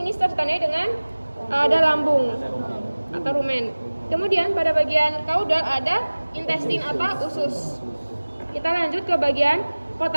ditandai dengan ada lambung atau rumen. Kemudian pada bagian kaudal ada intestin atau usus. Kita lanjut ke bagian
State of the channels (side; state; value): both; inverted; correlation -1.00